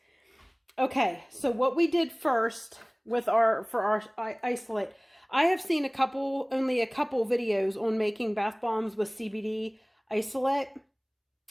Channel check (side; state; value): both; identical; correlation 1.00